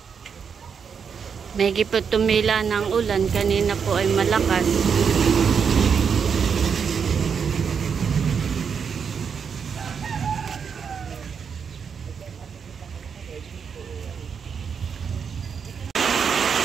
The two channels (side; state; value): left; quieter; 6.6 dB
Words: Medyo po tumila ng ulan, kanina po ay malakas.